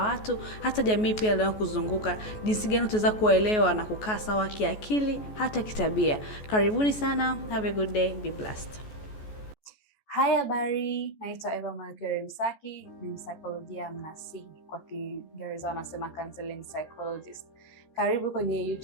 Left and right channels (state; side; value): late; right; 14 ms